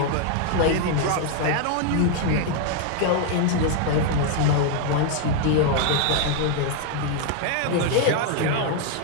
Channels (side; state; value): both; different; correlation 0.00